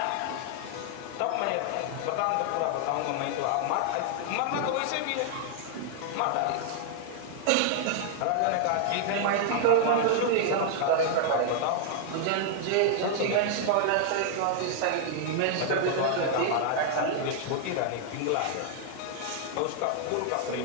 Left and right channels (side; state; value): both; different; correlation -0.01